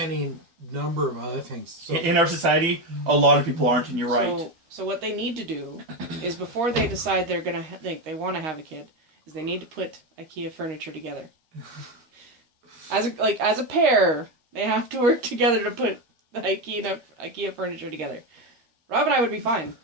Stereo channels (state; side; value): late; left; 13 ms